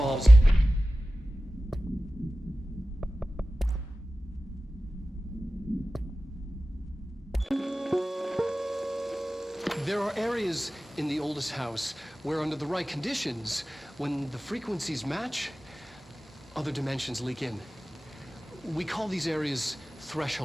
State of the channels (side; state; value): both; normal; correlation 0.96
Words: there are areas in the oldest house where, under the right conditions, when the frequencies match, other dimensions leak in. We call these areas